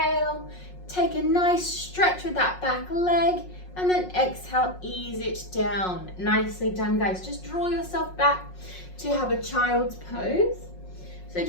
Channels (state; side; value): late; right; 5.5 ms